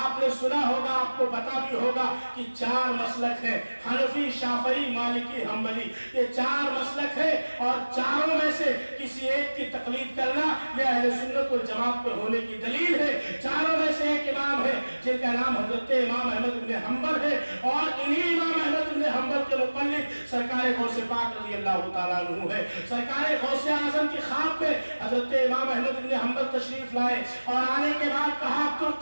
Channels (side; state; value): both; inverted; correlation -1.00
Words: सुना होगा, आपको पता भी होगा कि 4 मसलक है, हनफी, शाफई, मालिकी, हम्बली, ये 4 मसलक है اور چاروں میں سے کسی ایک کی تقلید کرنا یہ اہل سنت والجماعت پہ ہونے کی دلیل ہے۔ چاروں میں سے ایک امام ہے جن کا نام حضرت امام احمد بن حنبل ہے، اور انہی امام احمد بن حنبل کے مقلد سرکار غوث پاک رضی اللہ تعالیٰ عنہ ہے۔ سرکار غوث اعظم کی خواب پہ حضرت امام احمد بن حنبل تشریف لائے اور آنے کے بعد کہا